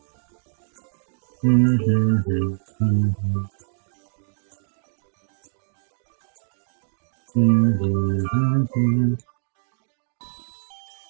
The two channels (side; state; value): left; silent; digital silence